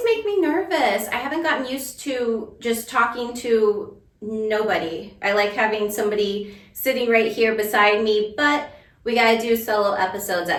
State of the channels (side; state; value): both; identical; correlation 1.00